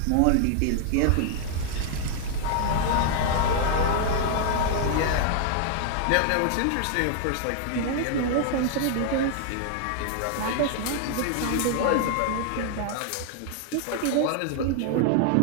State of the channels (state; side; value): different; both; correlation 0.00